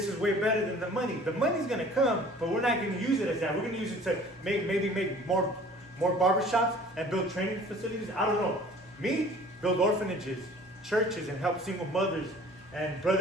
is way better than the money. The money's going to come, but we're not going to use it as that. We're going to use it to maybe make more barber shops and build training facilities. I don't know. Me, build orphanages, churches, and help single mothers and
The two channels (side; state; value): both; normal; correlation 0.49